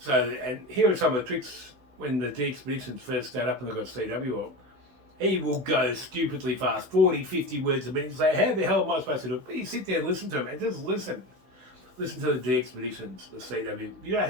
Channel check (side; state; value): left; late; 16 ms